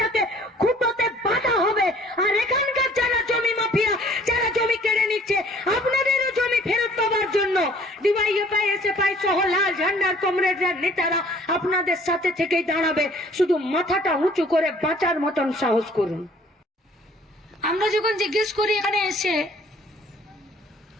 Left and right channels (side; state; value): both; normal; correlation 0.55